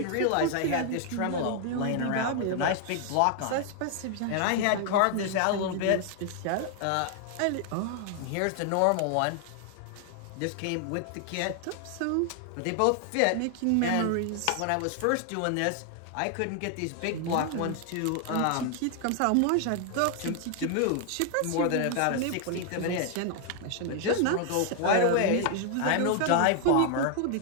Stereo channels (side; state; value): both; different; correlation 0.00